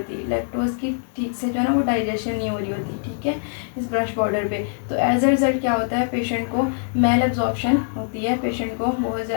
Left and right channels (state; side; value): silent; right; digital silence